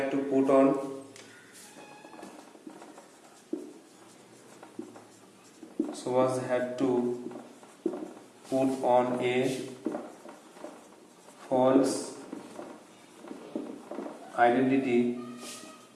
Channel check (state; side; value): identical; both; correlation 1.00